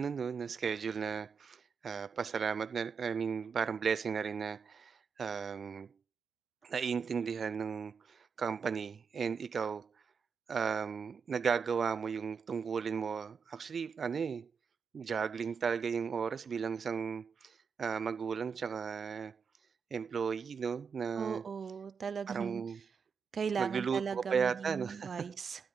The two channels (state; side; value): quieter; left; 6.0 dB